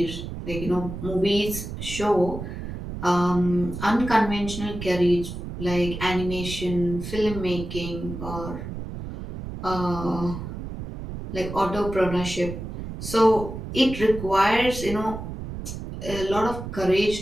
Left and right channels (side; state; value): right; noise; rumble, 8 dB below the sound